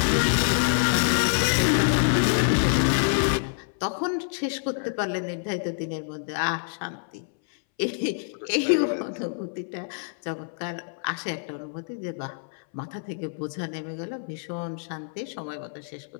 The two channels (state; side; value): silent; right; 60 dB below the other